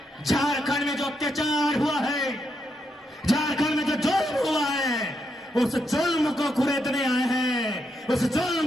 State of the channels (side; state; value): both; normal; correlation 0.81